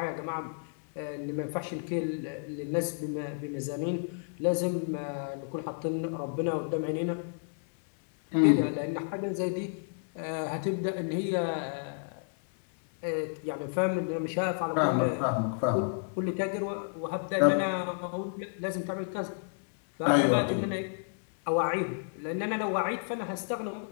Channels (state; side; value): silent; right; digital silence